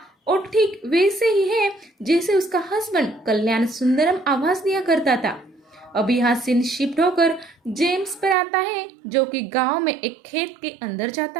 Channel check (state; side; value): drops out; left; at 8.3 s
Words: और ठीक वैसे ही है जैसे उसका हस्बैंड कल्याण सुंदरम आवाज दिया करता था। अब यहाँ सीन शिफ्ट होकर जेम्स पर आता है, जो कि गांव में एक खेत के अंदर जाता